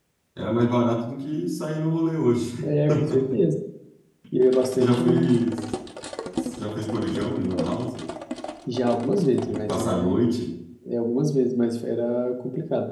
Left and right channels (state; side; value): identical; both; correlation 1.00